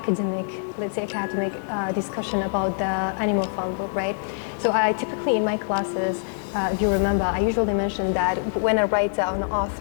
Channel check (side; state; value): right; silent; 62 dB below the other